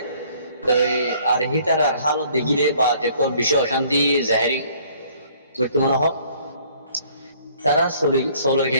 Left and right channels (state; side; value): inverted; both; correlation -0.59